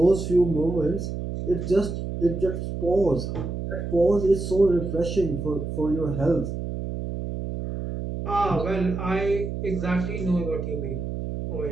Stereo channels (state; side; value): noise; right; hum, 5 dB below the sound